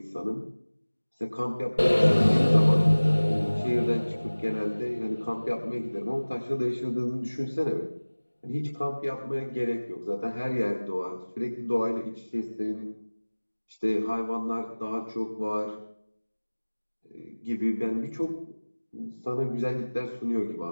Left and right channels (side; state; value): both; inverted; correlation -1.00